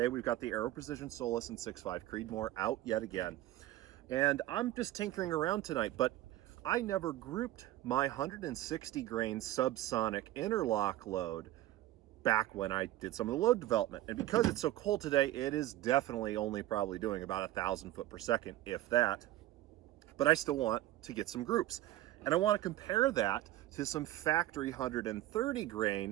we've got the Aero Precision Solus and 6.5 Creedmoor out yet again. And I'm just tinkering around tonight, but I never grouped my 160 grain Subsonic Interlock load back when I did some of the load development. And because it's so cold today, it is definitely only probably doing about 1,000 foot per second, if that. But I still want to get some groups. And I want to compare that to some factory 130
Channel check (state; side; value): quieter; left; 15.0 dB